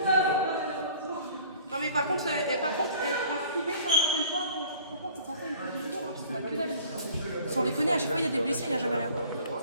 Non mais par contre, un privé, quand on fait le point, c'est censé être plus court, parce qu'on a que dalle. Sans déconner, à chaque fois il y a des blessés, il n'y a jamais rien.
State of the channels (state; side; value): inverted; both; correlation -0.51